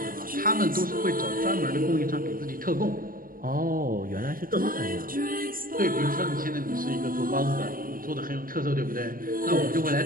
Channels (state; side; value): late; left; 0.41 ms